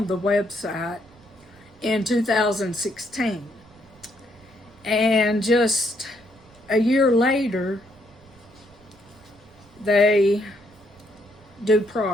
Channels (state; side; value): noise; right; rumble, 27 dB below the sound